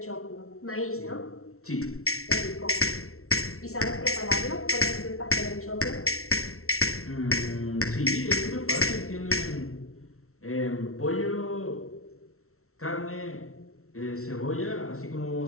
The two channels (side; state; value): right; late; 0.63 ms